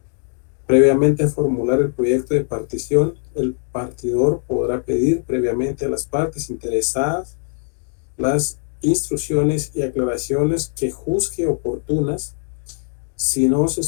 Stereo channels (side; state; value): right; silent; 56 dB below the other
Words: Previamente a formular el proyecto de partición, el partidor podrá pedir previamente a las partes interesadas las instrucciones y aclaraciones que juzgue oportunas. Si no se